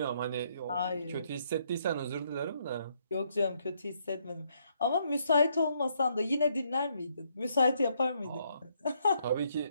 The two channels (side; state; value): both; inverted; correlation -0.73